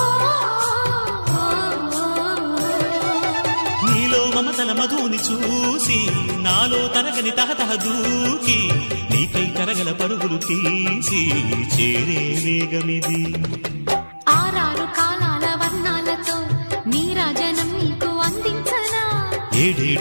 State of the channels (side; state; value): both; inverted; correlation -1.00